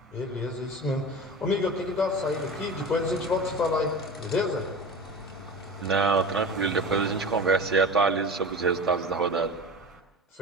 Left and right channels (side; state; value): both; normal; correlation 0.31